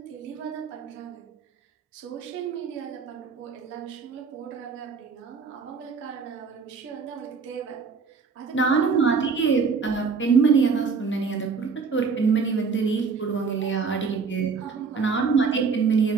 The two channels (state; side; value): quieter; left; 5.2 dB